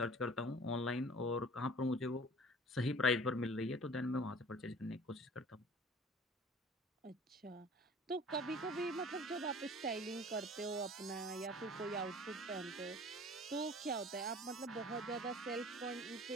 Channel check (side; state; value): both; normal; correlation 0.45